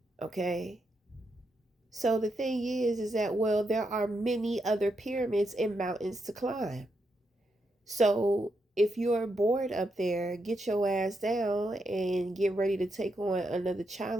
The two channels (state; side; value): normal; both; correlation 0.82